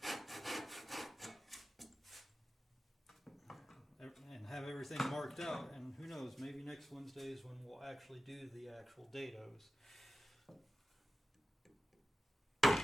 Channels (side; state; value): both; normal; correlation 0.94